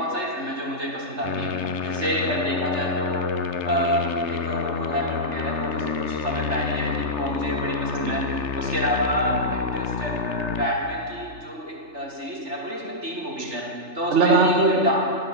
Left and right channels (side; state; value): left; late; 3.3 ms